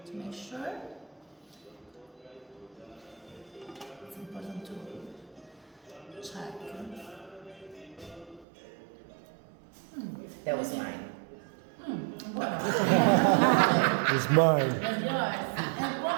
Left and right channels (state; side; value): drops out; left; at 8.5 s